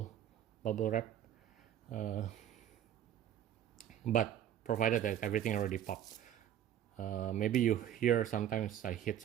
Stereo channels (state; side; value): quieter; left; 10.7 dB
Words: wrap. But provided that everything already popped. Maybe you hear sometimes I hit